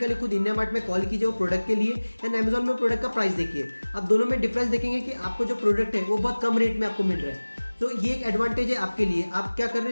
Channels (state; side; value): inverted; both; correlation -1.00